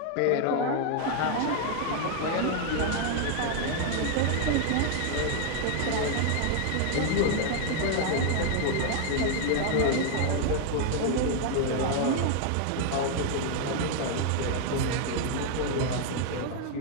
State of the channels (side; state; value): both; different; correlation 0.00